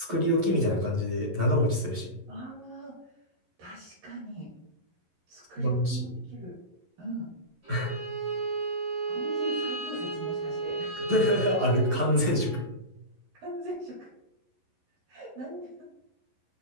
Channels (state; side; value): late; left; 11 ms